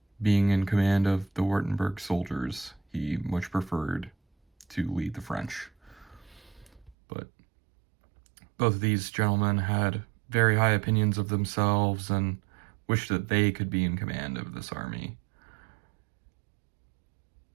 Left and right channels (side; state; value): left; drops out; at 7.0 s